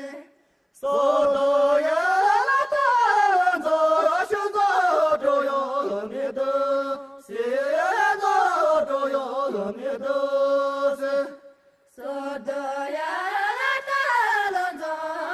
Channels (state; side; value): identical; both; correlation 1.00